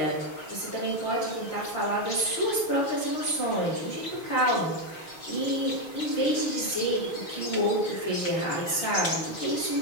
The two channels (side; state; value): right; late; 6.4 ms